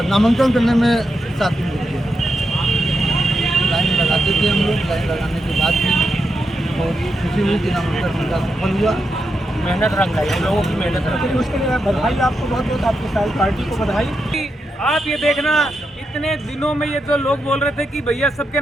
नामांकन करने में 7 दिन लग गया। लाइन लगाते थे हम लोग, लाइन लगाने के बाद भी बहुत खुशी हुई कि नामांकन उनका सफल हुआ। मेहनत रंग लाई, हम लोगों की मेहनत रंग लाई। उसके लिए बधाई आपको, बहुत बहुत आपकी सारी पार्टी को बधाई। आप ये देखना, इतने दिनों में ये जो लोग बोल रहे थे कि भैया सबके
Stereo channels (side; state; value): both; normal; correlation 0.85